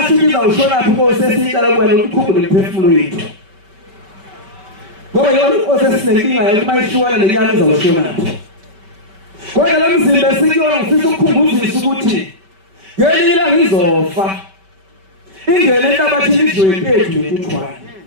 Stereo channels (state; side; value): late; left; 5.2 ms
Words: ukuthi izawushonaphi Nkosi esiyicela kuwena ukuthi ukhumbule imphefumulo yethu. Ngoba yona osesinenkinga yokuthi mayishukana lenyama izawushonaphi. Kodwa le mzimba esikuyona ngifisa ukukhumbuzisa ukuthi ngelinye ilanga izofa. Ingene enhlabathini idliwe impethu nentuthwane.